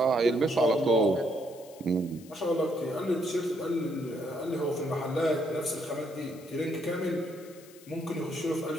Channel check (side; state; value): left; noise; hiss, 22 dB below the sound